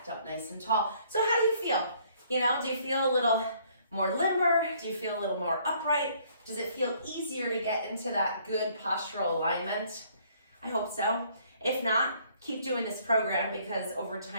up nice and tall. So how do you feel? You know, do you feel a little more limber? Do you feel a little more upright? Does it feel easier to get into that good postural alignment? I hope so. If not, keep doing this program because over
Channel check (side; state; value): both; inverted; correlation -0.62